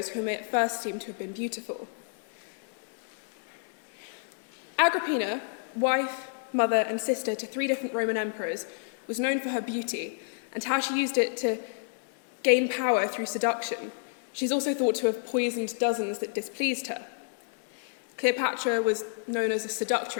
who may at first seem to have been beautiful. Agrippina, wife, mother, and sister to 3 different Roman emperors, was known for her beauty and how she used it to gain power through seduction. She's also thought to have poisoned dozens that displeased her. Cleopatra was known as a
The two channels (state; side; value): silent; right; 58 dB below the other